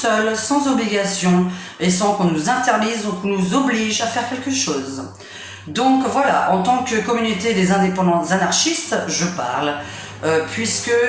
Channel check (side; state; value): both; identical; correlation 1.00